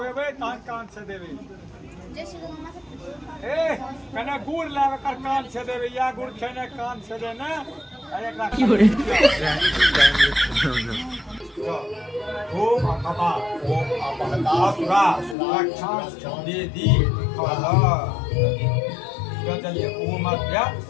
तहन कान से देबे। ए कने गुड़ लाब एकर कान से देबे या गुड़ खेने कान से दे ना एकरा ओम अपा ओम अपहता सुरा सुरक्षा देदी खला चलिए ओम अध्या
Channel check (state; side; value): drops out; right; at 15.4 s